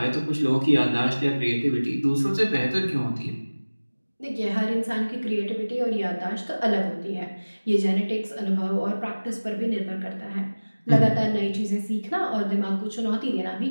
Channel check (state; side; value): inverted; both; correlation -1.00